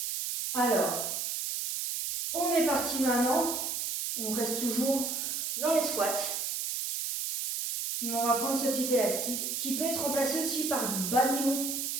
Alors, on est parti maintenant. On reste toujours dans les squats. On va prendre ce petit élastique qui peut être remplacé aussi par du bas nylon.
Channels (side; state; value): right; noise; hiss, 2 dB below the sound